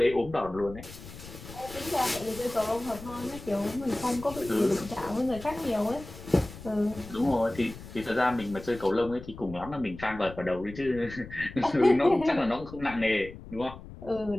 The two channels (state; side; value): noise; left; rumble, 15 dB below the sound